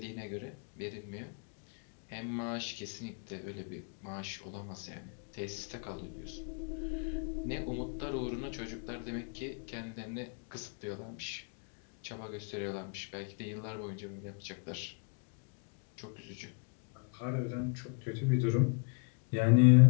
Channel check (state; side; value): quieter; right; 35.4 dB